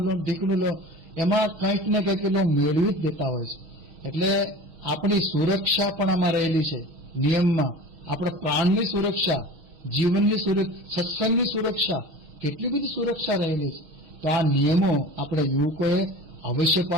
લો, ઢીકણું લો, એમાં કંઈક ને કંઈક એ મેળવી જ દેતા હોય છે. એટલે આપણી સુરક્ષા પણ આમાં રહેલી છે નિયમમાં. આપણા પ્રાણની સુરક્ષા, જીવનની સુરક્ષા, સત્સંગની સુરક્ષા, કેટલી બધી સુરક્ષા રહેલી છે. તો આ નિયમો આપણે યુવકોએ અવશ્ય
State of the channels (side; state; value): left; late; 6.4 ms